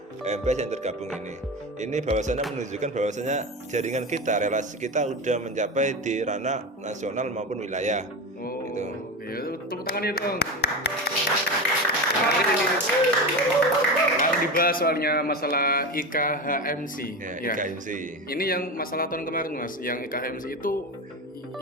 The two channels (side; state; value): both; normal; correlation 0.23